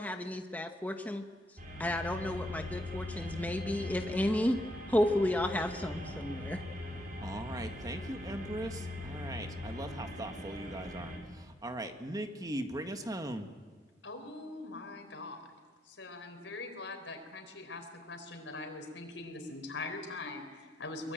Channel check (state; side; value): normal; both; correlation 0.78